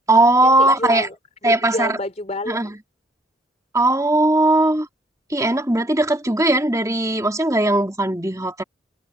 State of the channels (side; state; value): both; normal; correlation 0.62